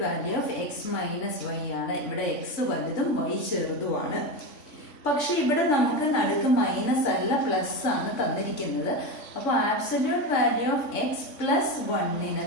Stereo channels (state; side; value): late; right; 3.5 ms